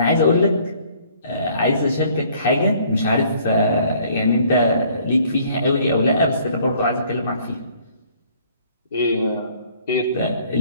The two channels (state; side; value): inverted; both; correlation -0.59